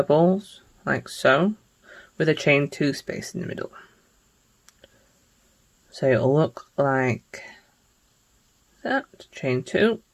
like so, with a chain 2 space in the middle. So it'll look like that, chain 2.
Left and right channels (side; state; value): both; identical; correlation 1.00